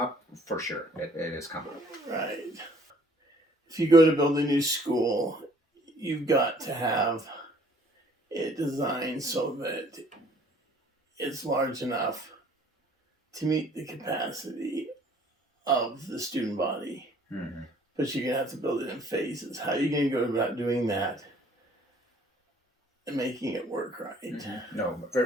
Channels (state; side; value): normal; both; correlation 0.58